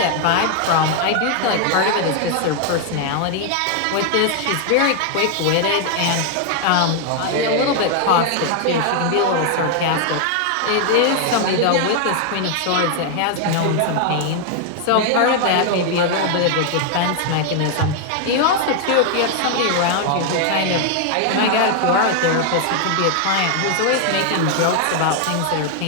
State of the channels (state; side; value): different; both; correlation 0.00